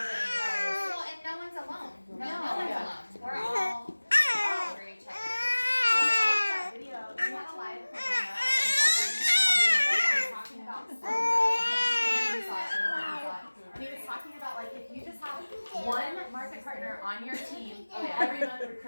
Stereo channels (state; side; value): inverted; both; correlation -1.00